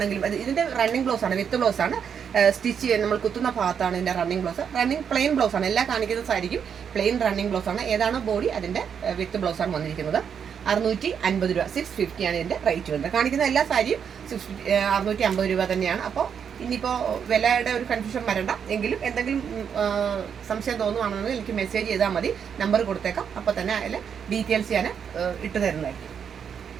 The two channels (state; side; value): quieter; left; 7.5 dB